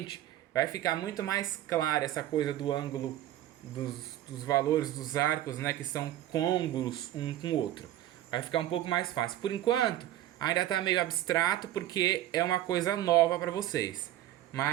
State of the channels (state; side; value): quieter; left; 13.1 dB